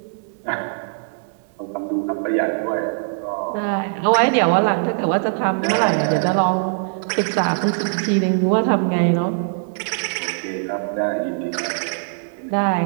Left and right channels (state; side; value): silent; left; digital silence